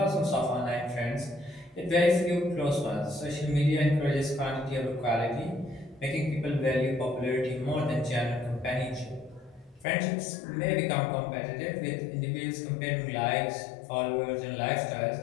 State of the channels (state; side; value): drops out; right; at 9.9 s